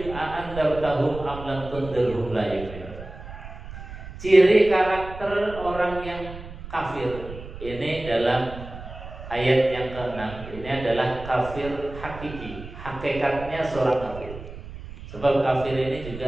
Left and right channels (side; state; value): right; noise; rumble, 13 dB below the sound